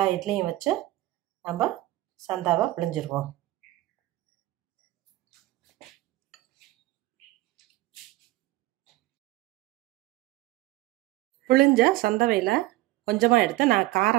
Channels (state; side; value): quieter; left; 17.8 dB